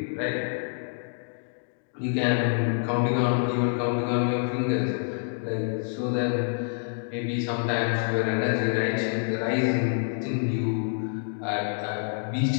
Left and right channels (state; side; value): silent; right; digital silence